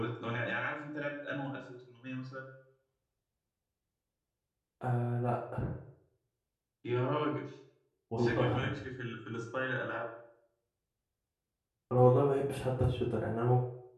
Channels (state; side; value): identical; both; correlation 1.00